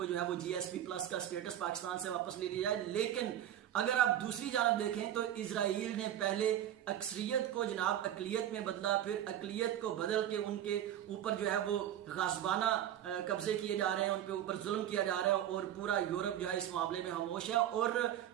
जो है वो GSP+ का स्टेटस पाकिस्तान से वापस ले लिया जाए। लेकिन अगर आप दूसरी जानब देखें तो इजराइल ने पहले अक्सरियत को जनाब अकलियत में बदला, फिर अकलियत को बदल के उनके ऊपर जो है वो गासबाना कब्जे किए जा रहे हैं, उन पे ऊपर जुल्म किया जा रहा है, और पूरा यूरोप जो है इस मामले में खामोश है। और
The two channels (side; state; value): left; quieter; 11.3 dB